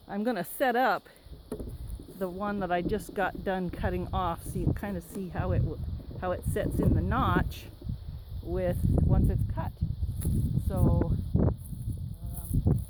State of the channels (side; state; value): both; identical; correlation 1.00